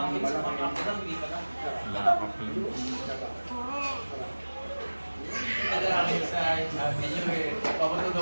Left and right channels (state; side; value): inverted; both; correlation -1.00